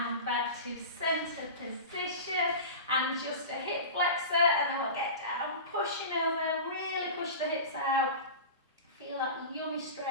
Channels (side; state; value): both; inverted; correlation -0.30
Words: back to centre position. And just a hip flexor. And then we'll get down. Pushing over. Really push the hips out. Feel that yummy